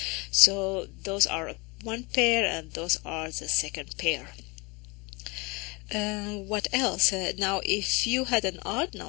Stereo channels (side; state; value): right; quieter; 27.1 dB